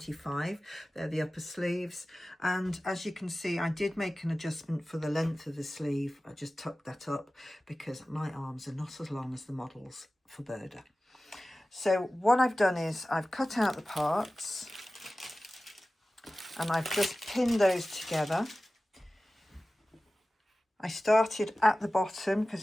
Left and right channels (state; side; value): normal; both; correlation 0.96